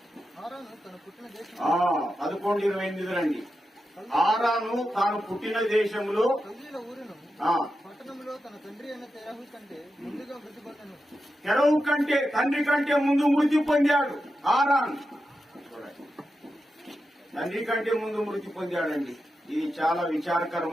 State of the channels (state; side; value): normal; both; correlation 0.89